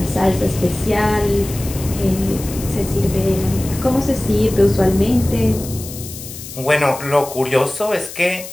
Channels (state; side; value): noise; left; hiss, 12 dB below the sound